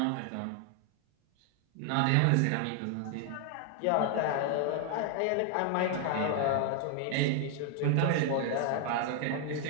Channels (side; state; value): both; different; correlation 0.00